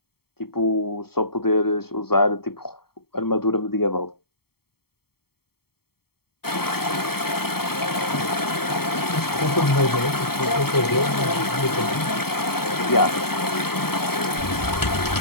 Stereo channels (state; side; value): late; right; 0.95 ms